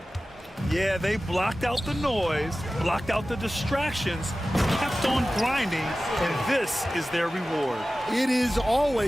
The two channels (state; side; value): normal; both; correlation 0.95